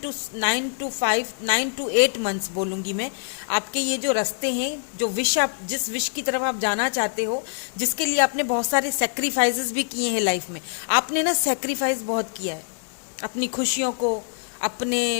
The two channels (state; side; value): silent; right; digital silence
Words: to 8 मंथ्स बोलूँगी मैं, आपके ये जो रास्ते हैं, जो विश आप, जिस विश की तरफ आप जाना चाहते हो, जिसके लिए आपने बहुत सारे सेक्रीफाइसेस भी किए हैं लाइफ में। आपने ना सेक्रीफाइस बहुत किया है, अपनी खुशियों को,